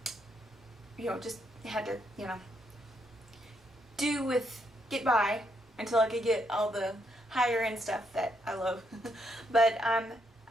just had to, get by until I could get all the higher end stuff that I love. But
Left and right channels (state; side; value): normal; both; correlation 0.76